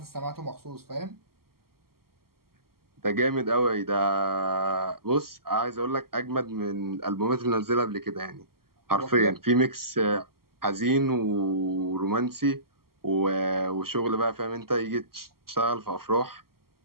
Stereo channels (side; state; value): left; late; 0.93 ms